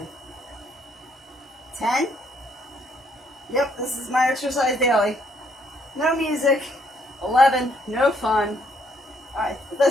10. Yep, this is my exercise daily. No music. 11. No fun. Alright,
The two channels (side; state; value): both; normal; correlation 0.69